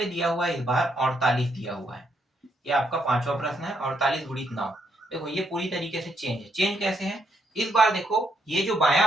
दिया हुआ है इस बार 48 दिया हुआ है। ये आपका पांचवा प्रश्न है, 48 गुणित 9। देखो ये पूरी तरीके से चेंज है। चेंज कैसे है, इस बार देखो ये जो बायां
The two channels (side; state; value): both; normal; correlation 0.76